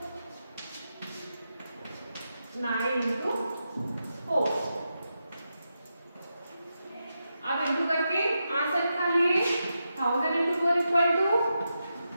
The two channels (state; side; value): inverted; both; correlation -0.87